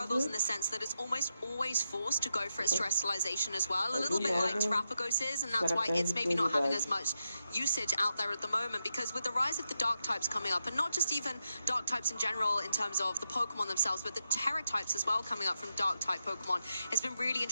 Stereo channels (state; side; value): inverted; both; correlation -0.86